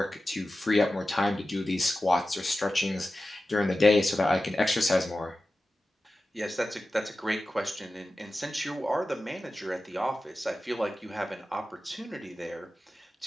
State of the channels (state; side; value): normal; both; correlation 0.94